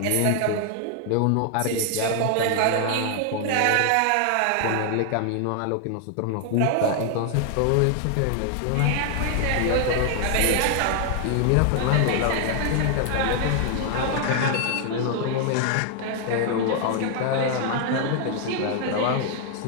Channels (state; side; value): different; both; correlation 0.00